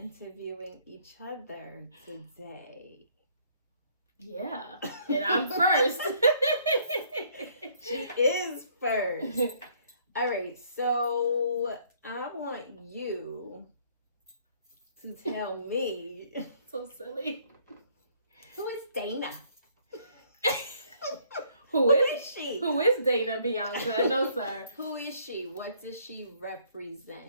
each other today. Yeah, and I'm first. She is first. All right, so I want you to tell me. So silly. Who is Dana? Who is she? Who is Drea Bianca? No, sir. Who is she? What does she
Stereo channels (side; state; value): both; inverted; correlation -0.63